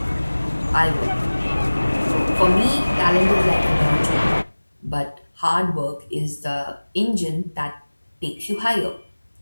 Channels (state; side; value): inverted; both; correlation -1.00